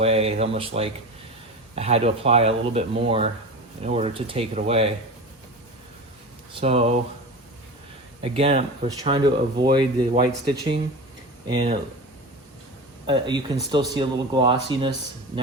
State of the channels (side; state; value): both; normal; correlation 0.29